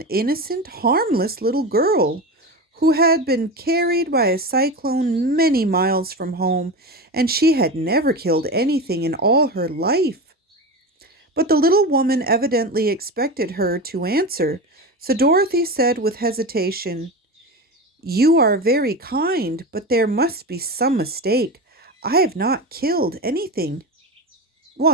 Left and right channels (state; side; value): normal; both; correlation 0.23